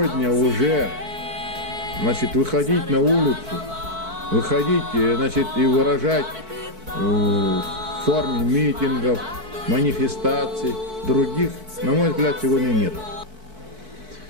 уже, выходить на улицу, выходить, и выражать в форме митингов, манифестаций, других, на мой взгляд, сегодня нет.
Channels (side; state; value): left; late; 4.6 ms